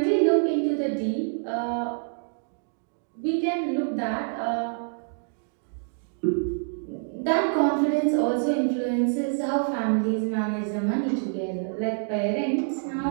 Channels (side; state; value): left; silent; digital silence